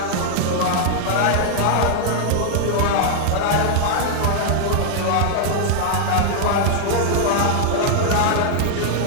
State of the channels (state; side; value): different; both; correlation -0.01